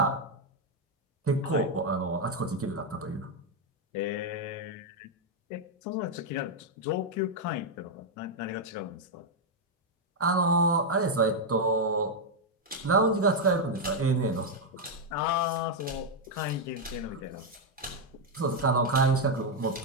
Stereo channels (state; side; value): normal; both; correlation 0.00